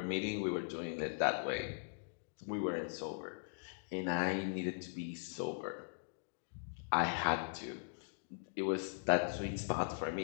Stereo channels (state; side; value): silent; right; digital silence